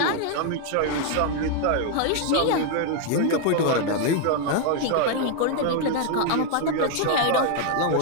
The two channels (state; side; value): different; both; correlation 0.00